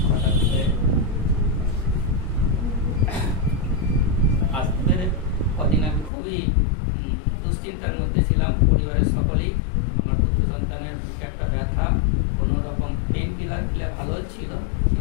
হঠাৎ করে আসতে পেরে কদিন আমি খুবই দুশ্চিন্তার মধ্যে ছিলাম। পরিবারের সকলেই আমার পুত্র সন্তানের একটা ব্যথা, কোনো রকম পেন কিলার খেলে ভালো ছিল,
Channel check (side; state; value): right; drops out; at 6.1 s